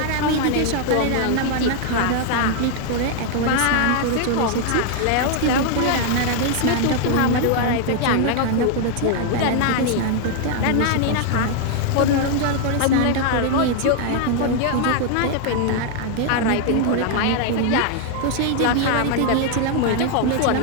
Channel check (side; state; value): both; different; correlation 0.00